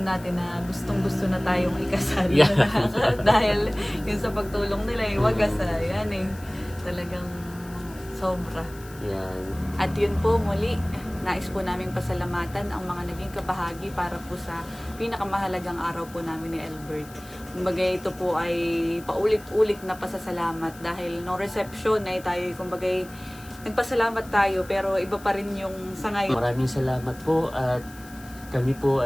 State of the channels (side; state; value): left; noise; hiss, 21 dB below the sound